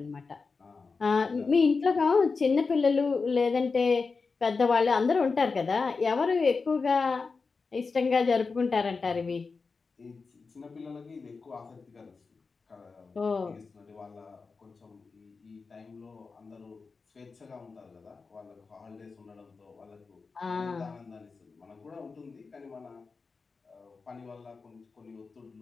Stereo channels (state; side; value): quieter; right; 4.5 dB